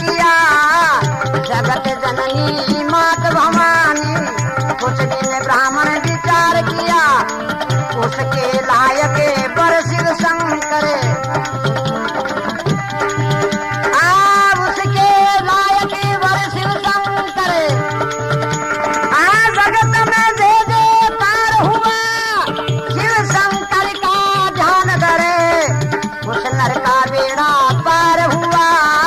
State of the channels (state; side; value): identical; both; correlation 1.00